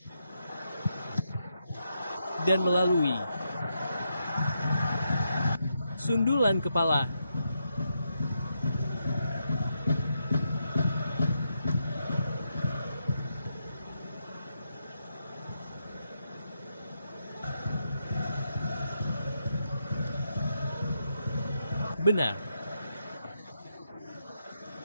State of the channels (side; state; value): both; inverted; correlation -0.82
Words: Dan melalui sundulan kepala. Benar.